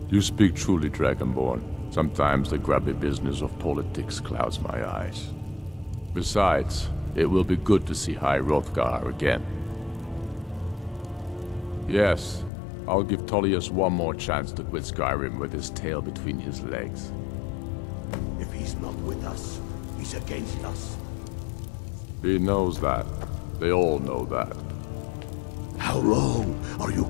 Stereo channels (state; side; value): drops out; right; at 12.5 s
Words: You speak truly, Dragonborn. Sometimes the grubby business of politics clouds my eyes. Besides, it will be good to see High Hrothgar again. Yes, I'll give Tullius one more chance to quit Skyrim with his tail between his legs. If he's not with us, he's against us. He knows that. They all know that. How long are you